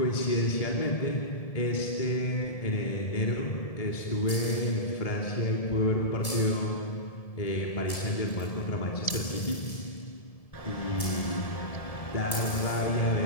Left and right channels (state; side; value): late; right; 1.7 ms